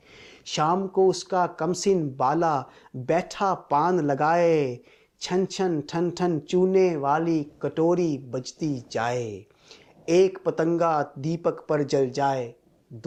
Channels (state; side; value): identical; both; correlation 1.00